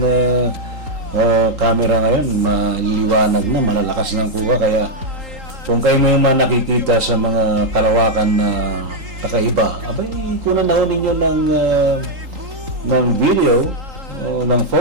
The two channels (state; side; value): late; left; 3.8 ms